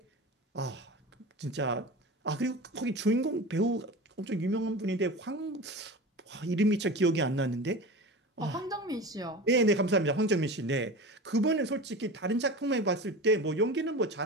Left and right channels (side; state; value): both; normal; correlation 0.31